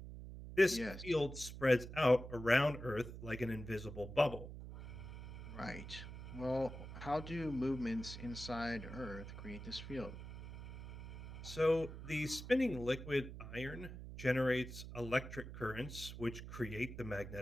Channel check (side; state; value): right; noise; hum, 10 dB below the sound